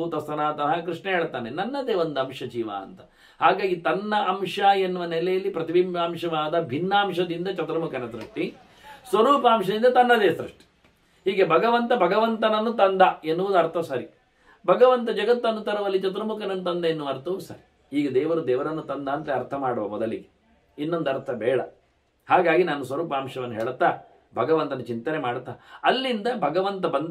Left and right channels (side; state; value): both; identical; correlation 1.00